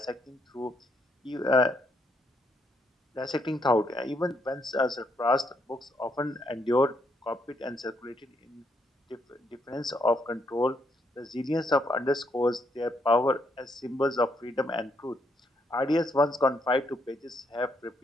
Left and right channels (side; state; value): both; normal; correlation 0.75